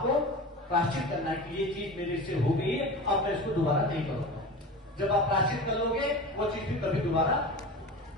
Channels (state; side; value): normal; both; correlation 0.31